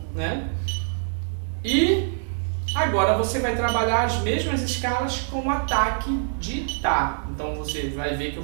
né? E agora você vai trabalhar as mesmas escalas com ataque de Tá. Então você vai ver que eu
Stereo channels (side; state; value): left; silent; 56 dB below the other